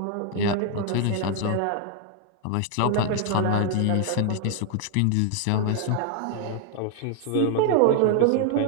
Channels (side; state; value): both; different; correlation 0.00